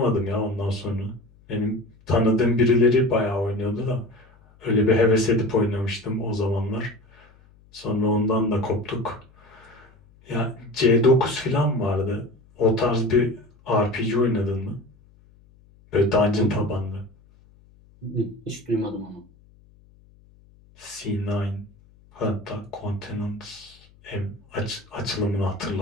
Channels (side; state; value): left; noise; hum, 28 dB below the sound